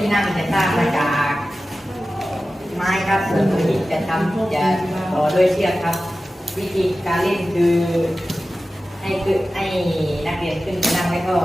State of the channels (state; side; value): normal; both; correlation 0.95